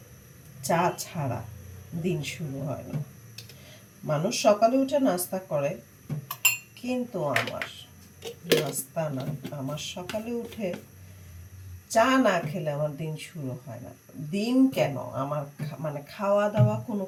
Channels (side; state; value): both; identical; correlation 1.00